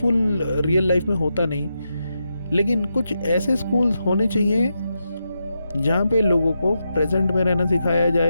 रियल लाइफ में होता नहीं। लेकिन कुछ ऐसे स्कूल्स होने चाहिए जहाँ पे लोगों को प्रेजेंट में रहना सिखाया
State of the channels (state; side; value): inverted; both; correlation -0.86